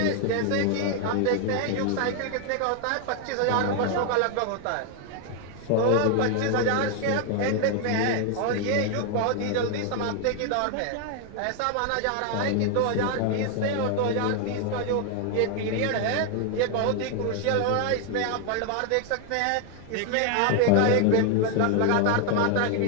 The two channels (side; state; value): both; different; correlation 0.00